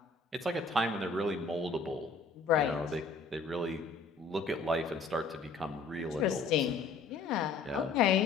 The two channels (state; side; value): quieter; right; 4.2 dB